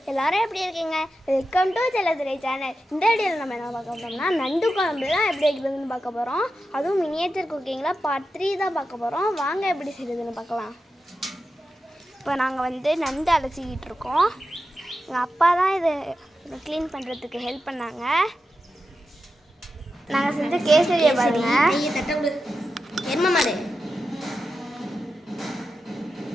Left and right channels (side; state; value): both; normal; correlation 0.90